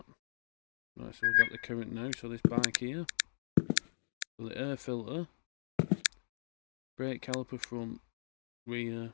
Right, so we've got the current now. So this bike here, so the air filter, brake caliper front,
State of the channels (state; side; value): silent; right; digital silence